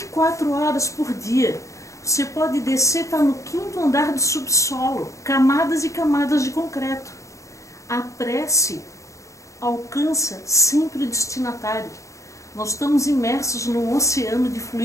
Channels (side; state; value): right; late; 0.15 ms